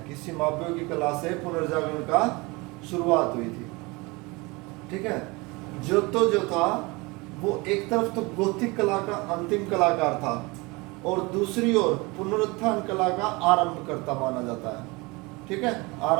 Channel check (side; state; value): left; quieter; 25.2 dB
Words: कि सिमाब्वे की कला से पुनर्जागरण का शुरुआत हुई थी। ठीक है। ज्योतो जो था वो एक तरफ तो गोथिक कला का अंतिम कलाकार था और दूसरी ओर पुनरुत्थान कला का आरंभ करता माना जाता है। ठीक है।